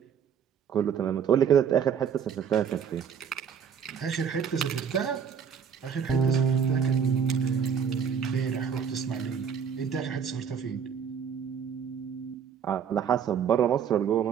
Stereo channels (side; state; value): left; quieter; 7.4 dB